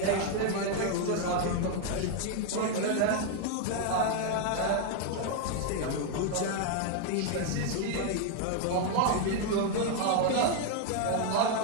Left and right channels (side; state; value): both; different; correlation 0.00